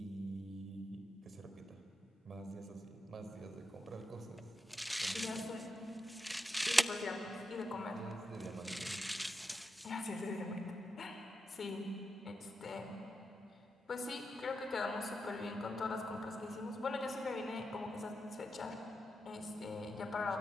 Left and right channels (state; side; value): normal; both; correlation 0.87